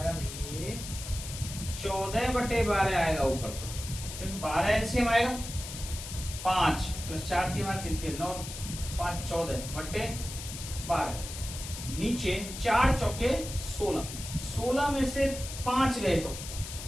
भैया 14/12 आएगा ऊपर, तो क्योंकि 12 एलसीएम आएगा, 5 + 4 3 3 3 9 5 14/12। नीचे 4 चौके 16, 16 में से 5 गए तो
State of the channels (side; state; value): left; noise; hiss, 9 dB below the sound